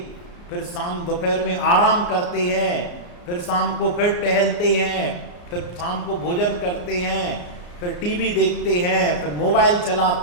फिर शाम दोपहर में आराम करते हैं, फिर शाम को फिर टहलते हैं, फिर शाम को भोजन करते हैं, फिर टीवी देखते हैं, फिर मोबाइल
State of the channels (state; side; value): late; right; 34 ms